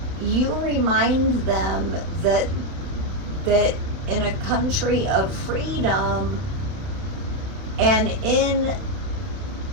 you remind them that in a country of freedom and in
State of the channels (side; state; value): left; late; 31 ms